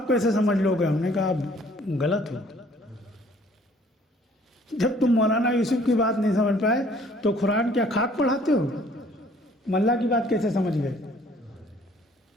कैसे समझ लोगे? हमने कहा आप गलत हो। जब तुम मौलाना यूसुफ की बात नहीं समझ पाए तो कुरान क्या खाक पढ़ाते हो? अल्लाह की बात कैसे समझ गए?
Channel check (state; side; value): normal; both; correlation 0.58